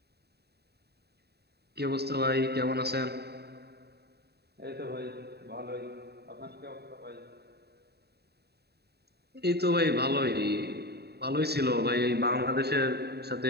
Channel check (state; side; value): late; left; 0.47 ms